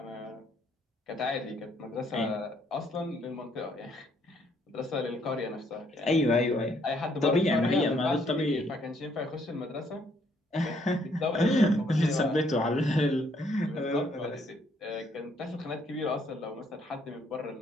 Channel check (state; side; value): normal; both; correlation 0.68